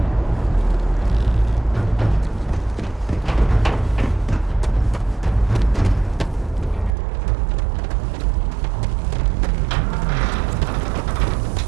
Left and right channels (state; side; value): drops out; left; at 6.9 s